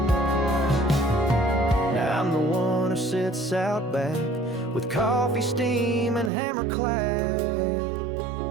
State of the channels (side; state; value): left; drops out; at 6.3 s